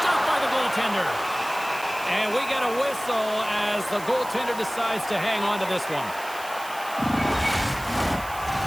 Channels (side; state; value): right; noise; hiss, 15 dB below the sound